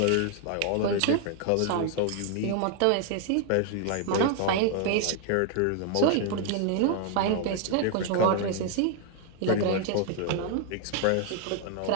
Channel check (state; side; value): different; both; correlation 0.00